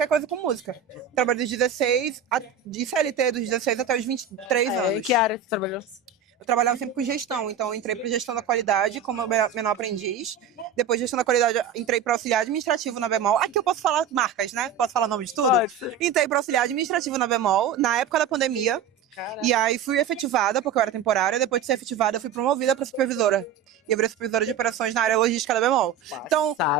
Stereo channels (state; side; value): quieter; left; 6.8 dB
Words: coisa com música. Trabalhei dos 16, de CLT dos 16 até os 23 anos. Em que área você trabalhou? Eu trabalhava sempre com gestão, então eu entrei para gestão da qualidade como menor aprendiz. Depois de gestão da qualidade, entrei para auxiliar administrativo na Bemol. Aqui eu posso falar marcas, né? Posso falar nome de tudo? Pode. Entrei para auxiliar administrativo na Bemol, na época da pandemia. Caraca. E aí fui efetivada, porque eu era temporária. Depois de ser efetivada, eu fui promovida para supervisora. E eu virei supervisora de operações na área logística da Bemol. Então,